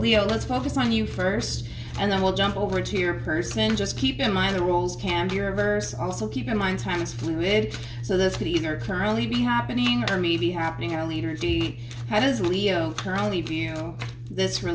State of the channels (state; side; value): identical; both; correlation 1.00